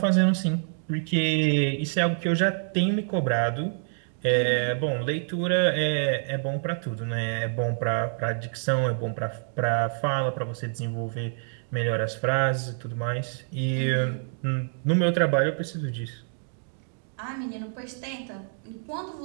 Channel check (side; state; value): left; silent; digital silence